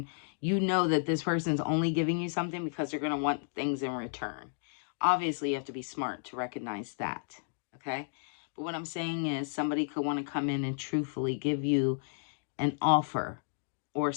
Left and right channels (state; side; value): silent; right; digital silence